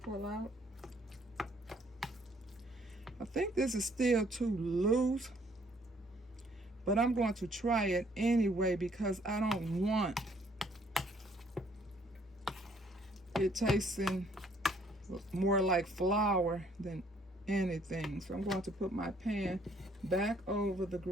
pull out. I think this is still too loose, but I'm going to try it anyway because I don't want it tasting more like flour than anything. So I'm going to put my pan back over the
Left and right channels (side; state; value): both; normal; correlation 0.64